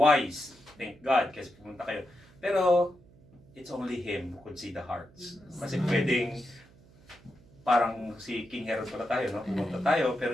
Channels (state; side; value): noise; right; hum, 26 dB below the sound